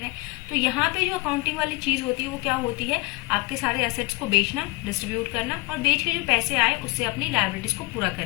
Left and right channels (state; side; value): quieter; right; 24.8 dB